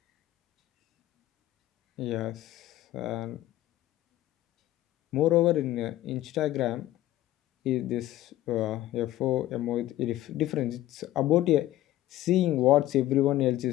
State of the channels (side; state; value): right; quieter; 14.8 dB